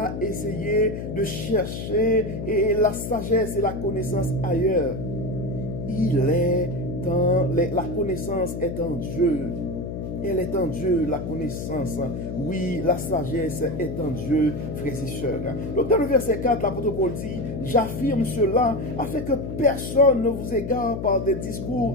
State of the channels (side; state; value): left; noise; hum, 6 dB below the sound